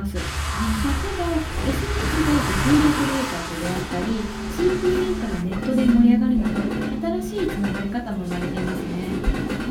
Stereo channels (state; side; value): identical; both; correlation 1.00